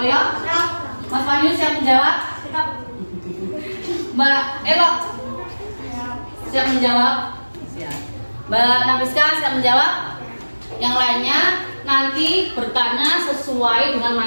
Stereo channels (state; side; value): inverted; both; correlation -1.00